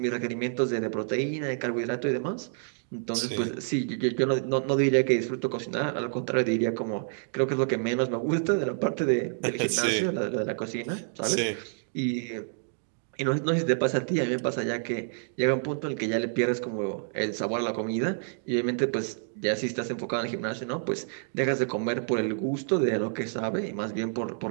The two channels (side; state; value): left; silent; digital silence